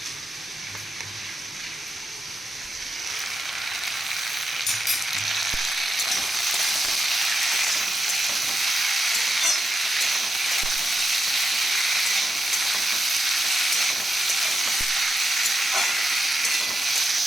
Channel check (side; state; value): both; normal; correlation 0.85